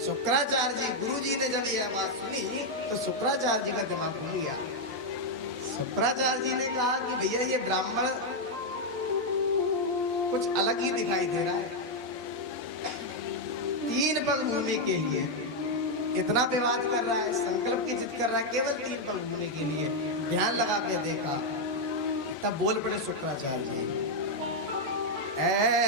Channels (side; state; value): both; normal; correlation 0.00